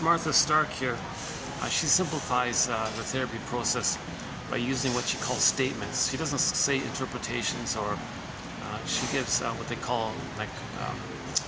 Martha Stark here, she simplifies the therapy process by using what she calls statements. She doesn't say interpretations, or she gives what they call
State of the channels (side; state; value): both; identical; correlation 1.00